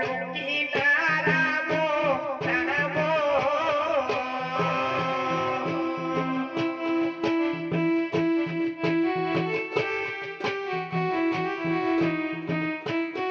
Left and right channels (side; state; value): both; identical; correlation 1.00